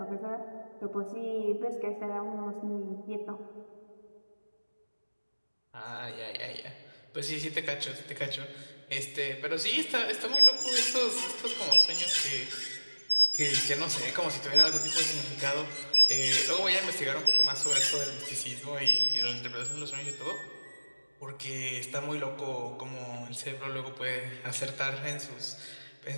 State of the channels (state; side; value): inverted; both; correlation -1.00